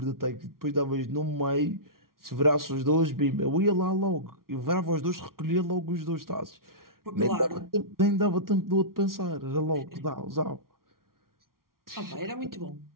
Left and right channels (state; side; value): late; left; 0.93 ms